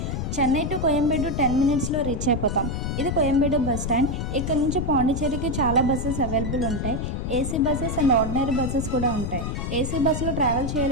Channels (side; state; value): left; noise; rumble, 3 dB below the sound